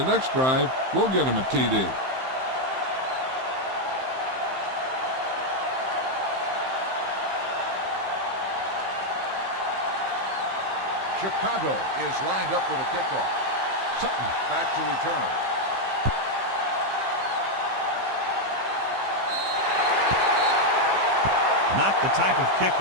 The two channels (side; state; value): left; late; 15 ms